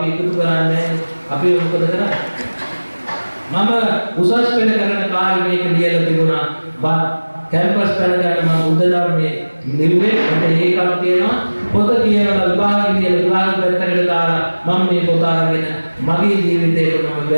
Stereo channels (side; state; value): both; inverted; correlation -1.00